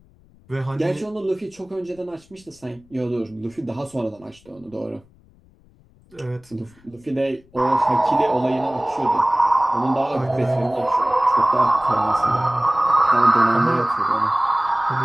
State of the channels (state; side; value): noise; left; rumble, 29 dB below the sound